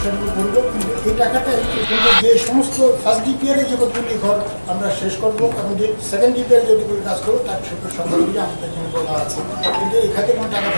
সেভাবে করবো, কিন্তু এই টাকাটাই কিন্তু যে সমস্ত ফার্স্ট ডিপিআরে যে কতগুলি ঘর আমরা শেষ করবো এবং যে সেকেন্ড ডিপিআর যেগুলি কাজ করবো তার সেগুলো সংখ্যাগুলি আমাদের জন্য বলা আছে, কিন্তু এই খাতে কোনো টাকা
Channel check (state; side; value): inverted; both; correlation -1.00